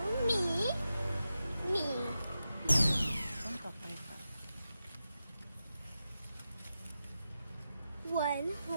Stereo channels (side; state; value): both; inverted; correlation -0.90